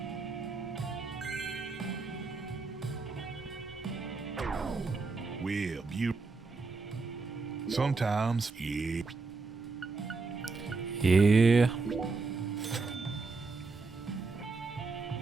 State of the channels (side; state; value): left; quieter; 4.1 dB